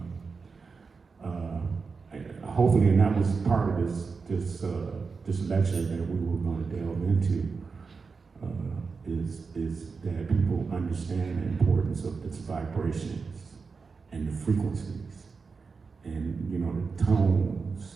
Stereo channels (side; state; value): left; quieter; 4.8 dB